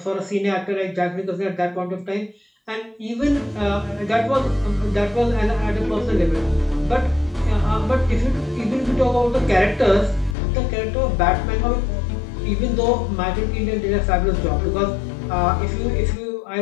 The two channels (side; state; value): right; drops out; at 10.4 s